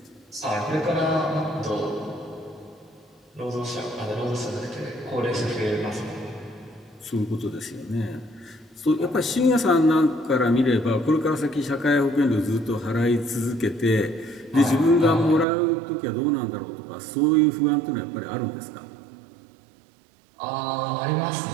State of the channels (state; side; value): drops out; left; at 15.5 s